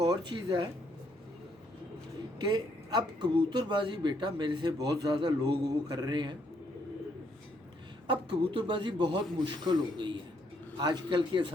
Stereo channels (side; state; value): both; normal; correlation 0.72